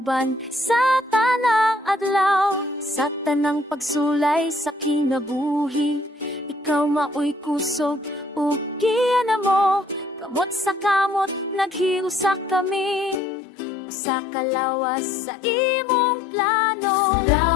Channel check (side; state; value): right; drops out; at 13.2 s